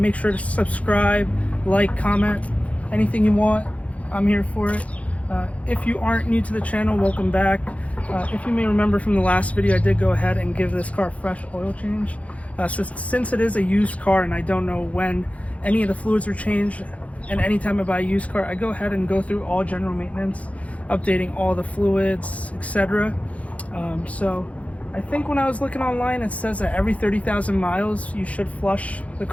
sure to subscribe, like, comment, anything you want. I'm here for it. If you aren't new to the channel, welcome back. If you may remember from the last video, I did go ahead and give this car a fresh oil change. Since it is a used car and I don't know when any of the fluids are changed, and anytime I buy a used car, I go ahead and go through all general maintenance, updating all the fluids, etc. So I think when I was looking online, it says that every 30,000 miles you should flush the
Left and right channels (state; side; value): late; right; 0.066 ms